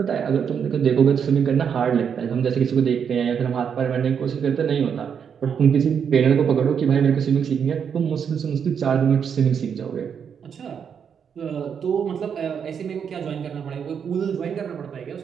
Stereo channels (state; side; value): quieter; left; 7.3 dB